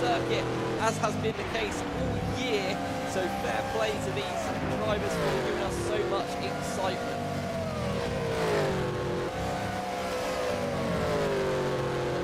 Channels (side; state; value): both; identical; correlation 1.00